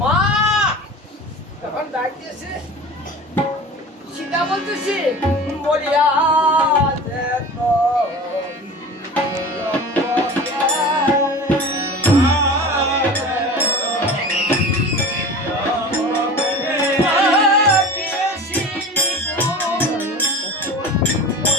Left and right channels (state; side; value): normal; both; correlation 0.36